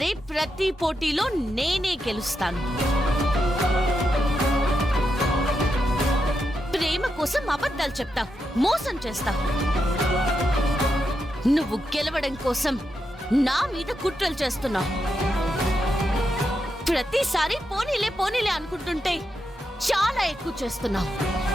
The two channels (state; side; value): normal; both; correlation 0.85